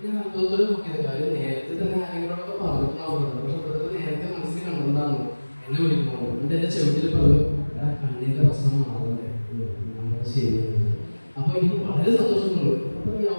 ഞാൻ അത്ഭുതത്തോടെ നോക്കിയത് കാര്യം നേരത്തെ തന്നെ ആരെങ്കിലോടൊക്കെ പറഞ്ഞിട്ടുണ്ടാവും. പക്ഷെ ബ്രദർ നേരത്തെ മനസ്സിൽ കണ്ടിട്ടുണ്ടാകുന്നു എന്നെ വിളിക്കുമ്പോൾ. എന്നിട്ട് എൻ്റെ ചെവിട്ടിൽ പറഞ്ഞു എടാ കണ്ണിൻ്റെ പ്രശ്നം മാറണ്ടേ നമ്മൾ ശരിയാണ്. അപ്പൊ എനിക്ക് വളരെ സന്തോഷമുണ്ട്. അപ്പൊ ഈ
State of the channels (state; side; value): inverted; both; correlation -1.00